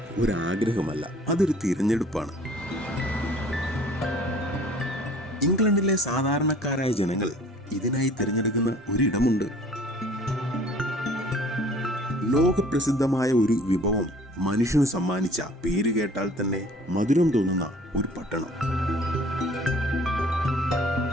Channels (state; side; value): normal; both; correlation 0.52